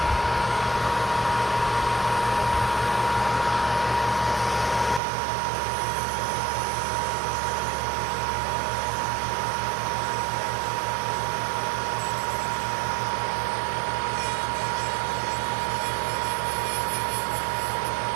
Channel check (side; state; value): left; drops out; at 5.0 s